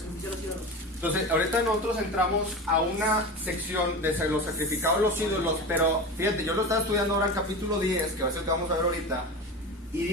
Entonces, ahorita nosotros entramos a una sección de los sacrificados los ídolos, pero fíjate, yo lo estaba estudiando ahora en capítulo 10, que va a ser el que vamos a ver ahorita, y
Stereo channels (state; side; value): normal; both; correlation 0.28